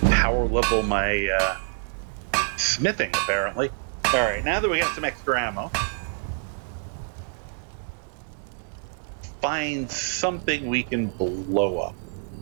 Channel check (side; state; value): left; silent; 61 dB below the other